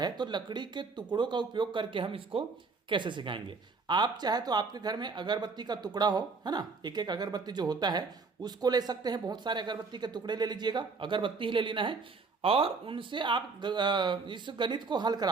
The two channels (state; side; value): quieter; left; 4.4 dB